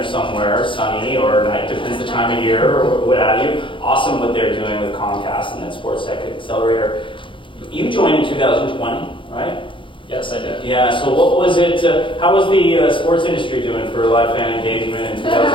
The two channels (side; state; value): right; late; 0.25 ms